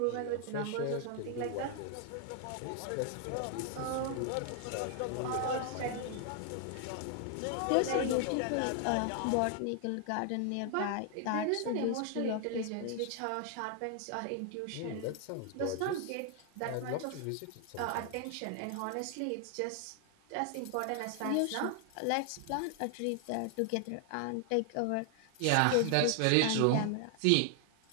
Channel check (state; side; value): different; both; correlation 0.00